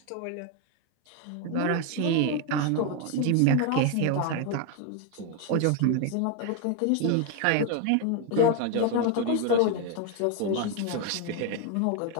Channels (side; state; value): both; different; correlation 0.01